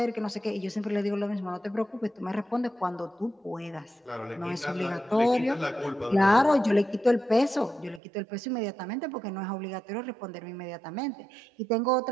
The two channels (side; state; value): left; drops out; at 8.0 s